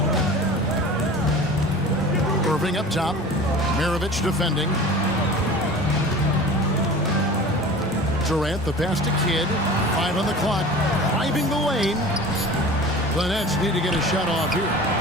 Irving up top. Maravich defending. Durant, the pass to Kidd. 5 on the clock. Driving the lane. The Nets need to get a shot off here.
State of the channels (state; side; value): normal; both; correlation 0.38